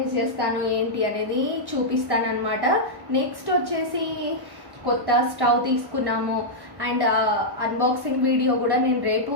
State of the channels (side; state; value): left; late; 1.1 ms